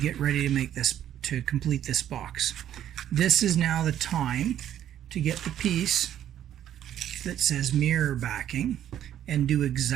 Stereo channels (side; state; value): left; quieter; 11.0 dB